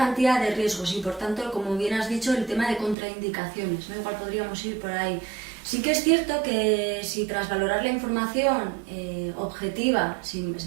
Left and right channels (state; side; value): drops out; left; at 3.0 s